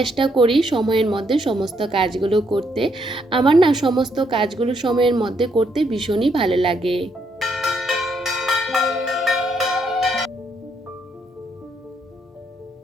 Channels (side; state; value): both; normal; correlation 0.74